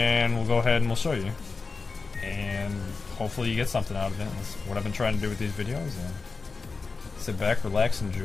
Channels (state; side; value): quieter; right; 4.3 dB